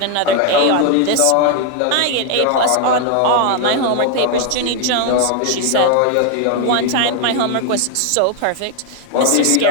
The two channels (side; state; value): both; different; correlation 0.00